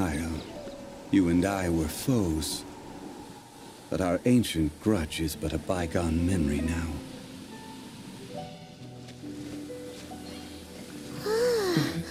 you and I were foes, but our ancient grudge is but a bygone memory now.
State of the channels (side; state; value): both; identical; correlation 1.00